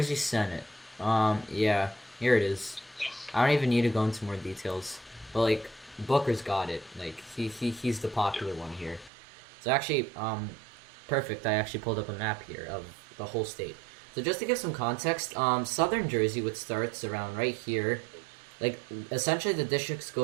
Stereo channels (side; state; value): left; drops out; at 9.1 s